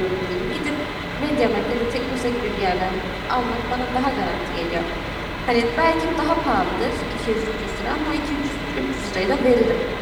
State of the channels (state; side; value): identical; both; correlation 1.00